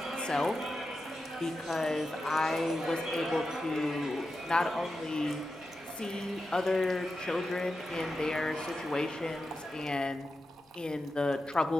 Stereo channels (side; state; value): both; normal; correlation 0.90